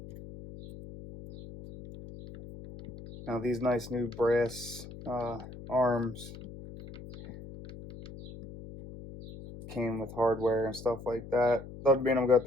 Now these nice new brass arms came with hardware and stuff like that. Doesn't mean I'm gonna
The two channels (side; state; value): left; noise; hum, 14 dB below the sound